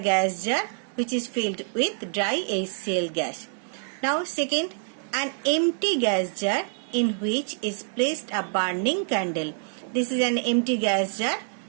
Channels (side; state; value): left; silent; 61 dB below the other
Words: gas jar which is filled with dry HCl gas. Now second, an empty gas jar in which is placed a burning candle. This is an empty gas jar